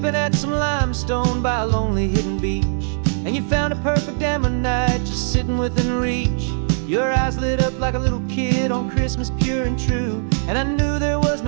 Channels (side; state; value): left; silent; digital silence